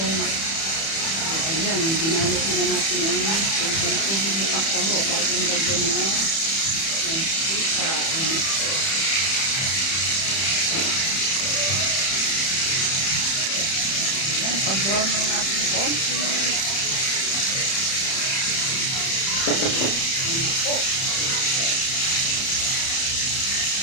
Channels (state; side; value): late; right; 31 ms